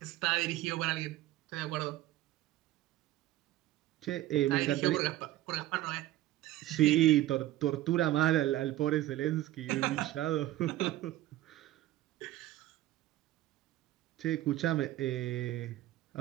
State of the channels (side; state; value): left; quieter; 15.2 dB